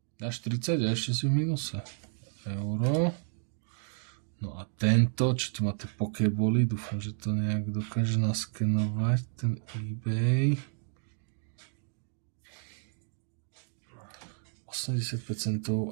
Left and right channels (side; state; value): left; silent; 57 dB below the other